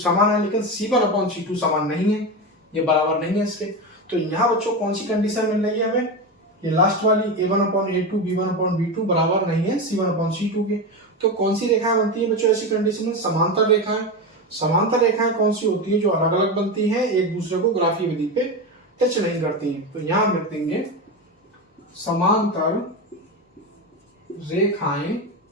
है, लेकिन c1/c2 समान नहीं है, ये बराबर नहीं है इसके। तो यहाँ बच्चों कौन सी कंडीशन मिल रही है हमें? ये लास्ट वाली a1/a2 b1/b2 बराबर नहीं है c1/c2 के। तो कौन सी रेखाएं बनती है बच्चों ऐसी कंडीशन में? समांतर रेखाएं। समांतर रेखाएं कौन सी होती है? जो अलग अलग बनती है, एक दूसरे को ग्राफीय विधि पे टच नहीं करती हैं। तो यहाँ हम लिख देंगे समांतर रेखाएं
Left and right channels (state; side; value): normal; both; correlation 0.18